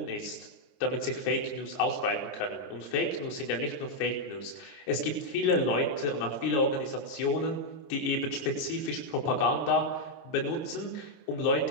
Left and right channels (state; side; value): late; right; 28 ms